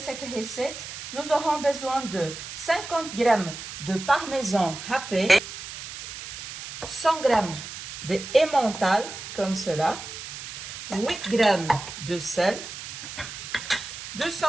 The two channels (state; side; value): noise; right; hiss, 10 dB below the sound